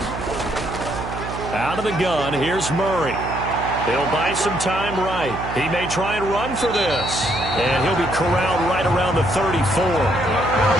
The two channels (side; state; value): right; noise; hum, 8 dB below the sound